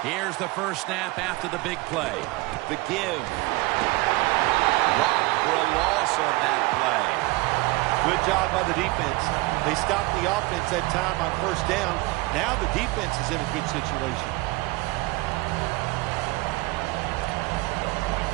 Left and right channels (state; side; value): quieter; left; 22.2 dB